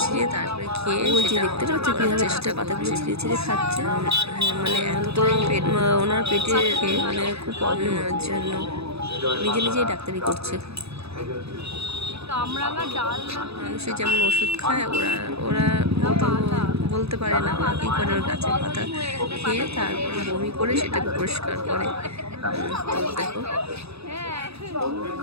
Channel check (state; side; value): late; left; 0.79 ms